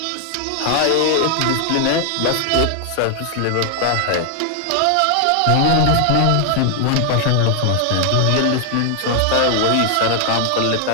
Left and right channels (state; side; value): different; both; correlation 0.00